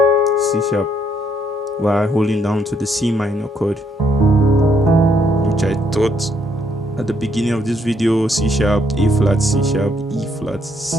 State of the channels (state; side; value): normal; both; correlation 0.71